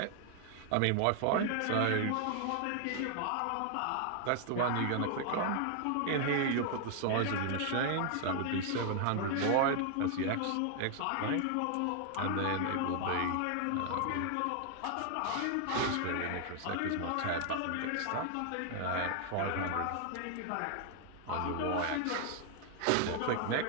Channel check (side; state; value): both; different; correlation 0.00